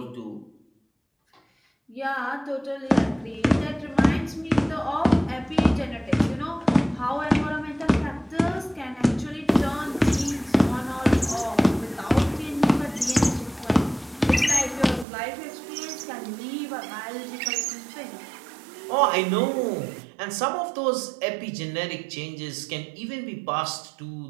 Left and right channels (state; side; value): drops out; left; at 15.1 s